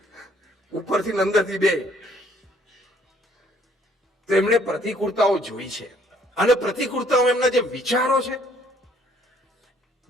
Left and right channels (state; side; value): normal; both; correlation 0.62